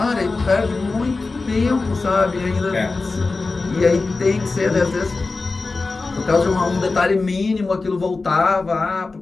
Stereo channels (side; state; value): right; quieter; 3.7 dB